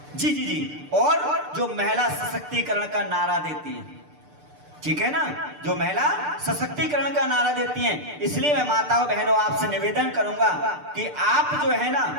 जी और जो महिला सशक्तिकरण का नारा देती है, ठीक है ना, जो महिला सशक्तिकरण का नारा देती हैं। इसलिए मैं माताओं बहनों आपसे निवेदन करूंगा कि आप जो है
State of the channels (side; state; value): left; late; 6.7 ms